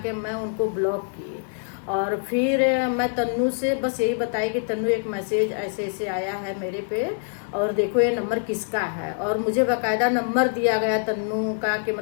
मैं उनको ब्लॉक की। और फिर मैं तन्नू से बस यही बताई कि तन्नू एक मैसेज ऐसे ऐसे आया है मेरे पे, और देखो ये नंबर किसका है। और मुझे बाकायदा नंबर दिया गया तन्नू का कि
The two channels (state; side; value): silent; right; digital silence